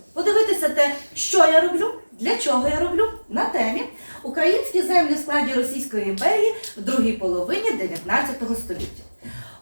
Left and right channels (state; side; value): inverted; both; correlation -1.00